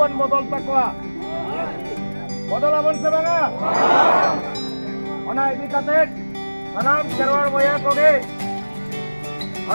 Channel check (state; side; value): inverted; both; correlation -1.00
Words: बदल तकवा बदलाबन से बांगा ओना इदी कते सनाम खेरवाड़ बोया कोगे